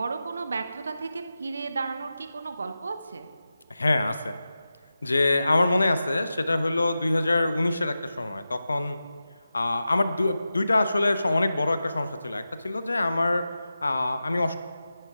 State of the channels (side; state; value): both; inverted; correlation -0.92